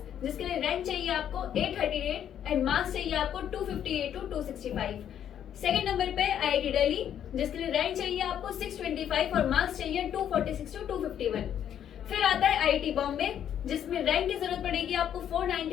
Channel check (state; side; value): quieter; right; 9.7 dB